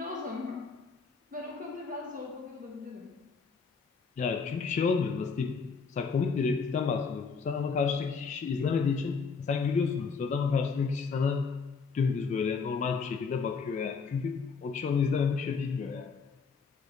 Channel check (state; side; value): quieter; right; 5.2 dB